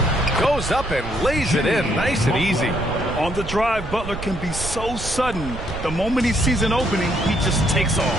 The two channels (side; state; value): right; noise; rumble, 9 dB below the sound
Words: Goes up and lays it in nice and easy. On the drive, Butler can be so sudden. The moment he sees an opening, he just takes